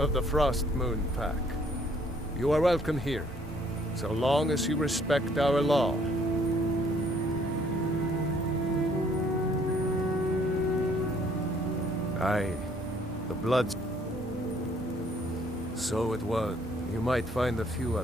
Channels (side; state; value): both; normal; correlation 0.63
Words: the Frostmoon Pack. You are welcome here, so long as you respect our law. Aye, the Bloods. So it was. You might find a few